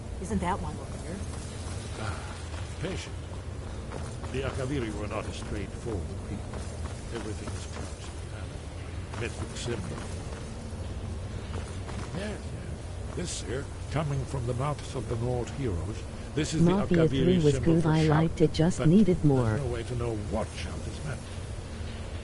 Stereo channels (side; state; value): both; identical; correlation 1.00